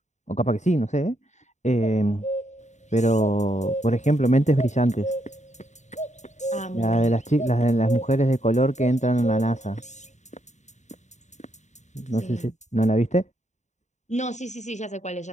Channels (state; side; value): late; right; 0.34 ms